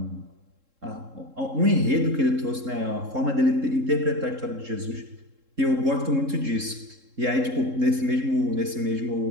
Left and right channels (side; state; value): left; late; 3.7 ms